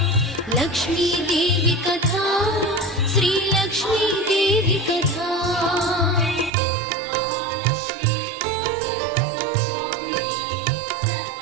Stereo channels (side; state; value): left; drops out; at 6.5 s